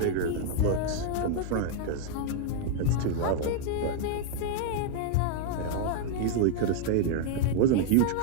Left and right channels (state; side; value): different; both; correlation -0.01